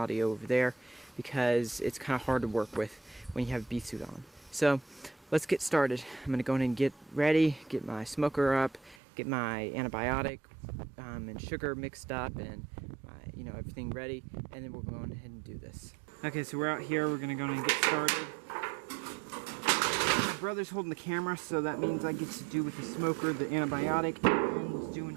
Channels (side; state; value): left; drops out; at 9.0 s